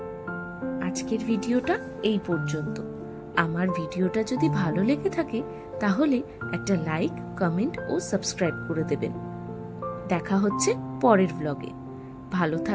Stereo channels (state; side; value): identical; both; correlation 1.00